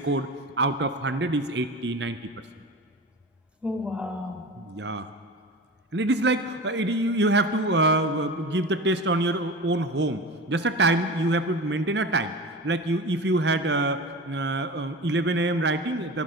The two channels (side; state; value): both; normal; correlation 0.31